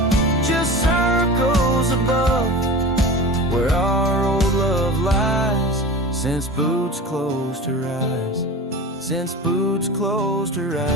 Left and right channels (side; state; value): both; normal; correlation 0.32